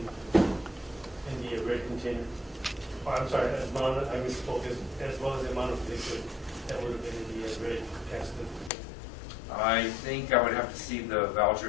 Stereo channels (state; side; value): drops out; right; at 8.7 s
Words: been in the red container? Or, I'm sorry, I misspoke, as well as the amount of liquid that would have been in the red gasoline container? I think I would have to see the